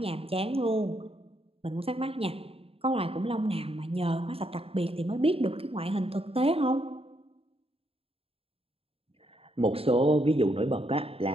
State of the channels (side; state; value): left; late; 0.28 ms